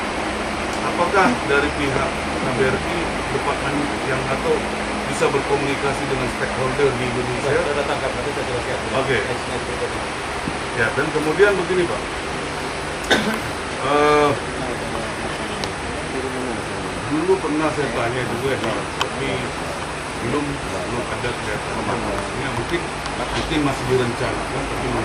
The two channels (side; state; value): both; identical; correlation 1.00